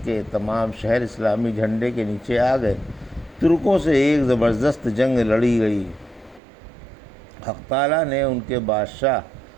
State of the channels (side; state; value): left; drops out; at 6.4 s